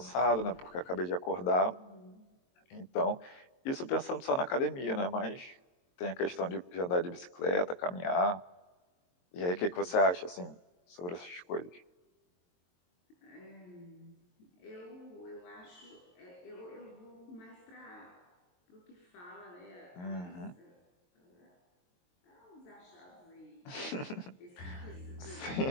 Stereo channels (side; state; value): right; late; 22 ms